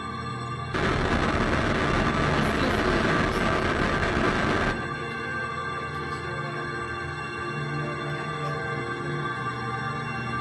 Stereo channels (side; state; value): both; identical; correlation 1.00